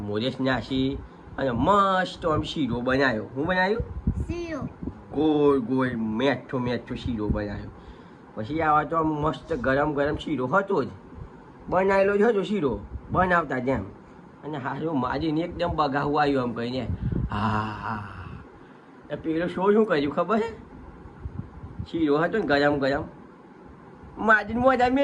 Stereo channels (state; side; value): identical; both; correlation 1.00